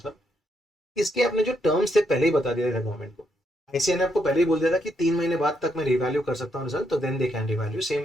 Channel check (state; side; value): normal; both; correlation 0.77